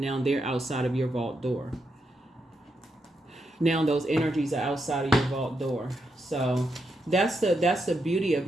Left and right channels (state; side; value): normal; both; correlation 0.83